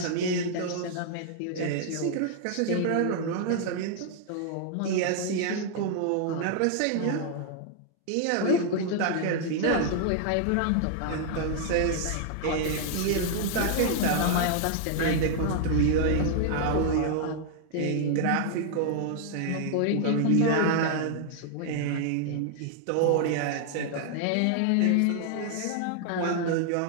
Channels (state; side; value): different; both; correlation 0.00